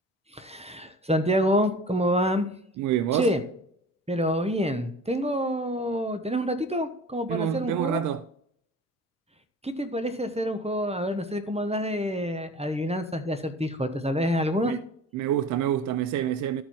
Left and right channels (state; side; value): normal; both; correlation 0.41